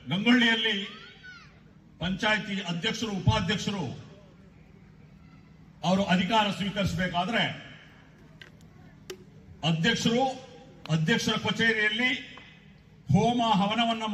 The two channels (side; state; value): both; identical; correlation 1.00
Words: गंगोलिಯಲ್ಲಿ पंचायती अध्यक्षರು उपाध्यक्षರು ಅವರು ಅಧಿಕಾರ ಸ್ವೀಕರಿಸಬೇಕಾದ್ರೆ ಅಧ್ಯಕ್ಷರ ಕಚೇರಿಯಲ್ಲಿ ಹೋಮ ಹವನವನ್ನ